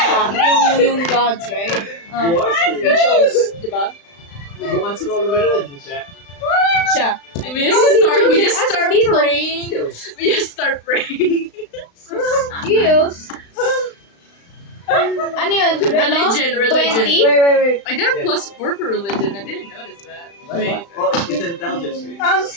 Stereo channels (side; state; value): right; late; 35 ms